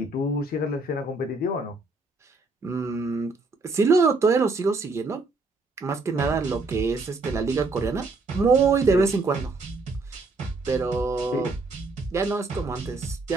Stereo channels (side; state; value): left; quieter; 3.5 dB